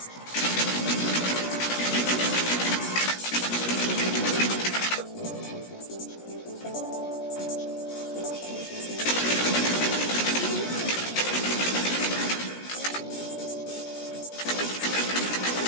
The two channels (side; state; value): right; late; 17 ms